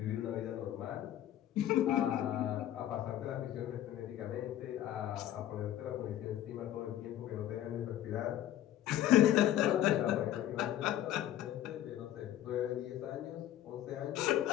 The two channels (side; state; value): right; quieter; 12.3 dB